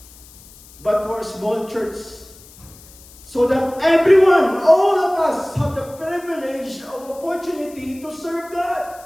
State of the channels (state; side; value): noise; left; hiss, 22 dB below the sound